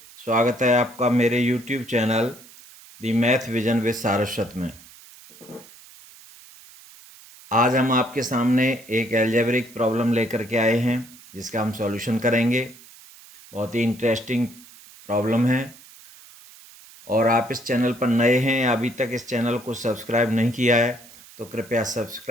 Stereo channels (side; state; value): right; noise; hiss, 21 dB below the sound